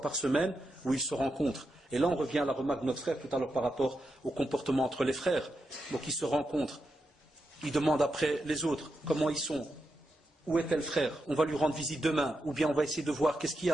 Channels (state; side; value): normal; both; correlation 0.86